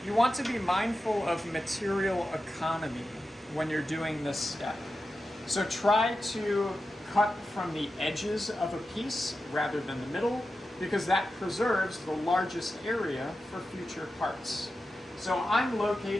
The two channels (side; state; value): both; normal; correlation 0.91